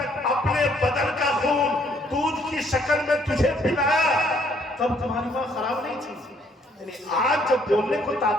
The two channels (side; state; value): both; normal; correlation 0.66